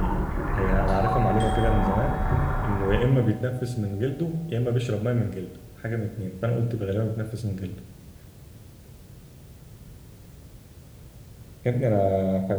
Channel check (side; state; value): both; identical; correlation 1.00